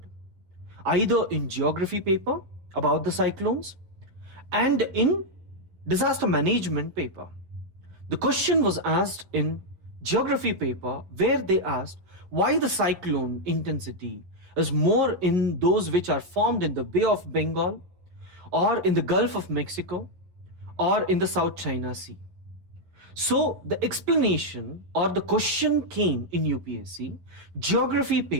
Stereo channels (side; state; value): left; late; 11 ms